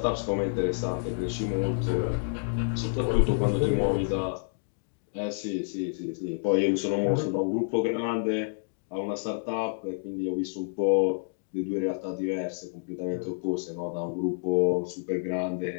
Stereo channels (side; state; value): right; silent; digital silence